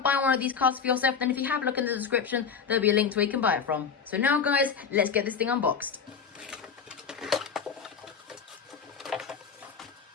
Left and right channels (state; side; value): quieter; right; 6.4 dB